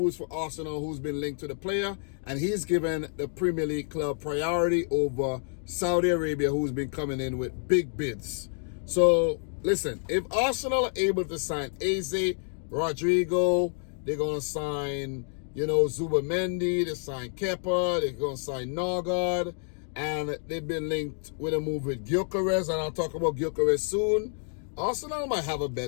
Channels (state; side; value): silent; right; 59 dB below the other